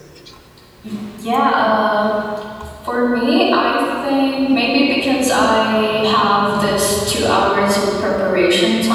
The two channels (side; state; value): both; identical; correlation 1.00